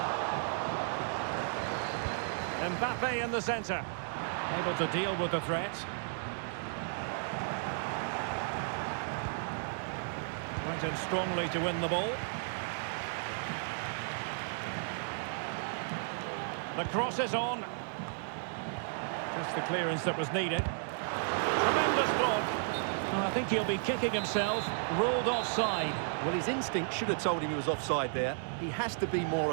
Mbappe in the centre. Able to deal with the threat. Went in strongly to win the ball. The cross is on. Just the clearance that was needed. Tremendous block. Oh, I think he'll be kicking himself. Ruled offside. Well, his instinct should have told him he was offside there. He has to be more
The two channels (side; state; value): left; silent; digital silence